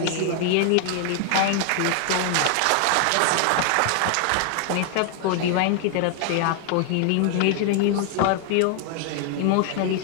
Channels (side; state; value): both; different; correlation 0.00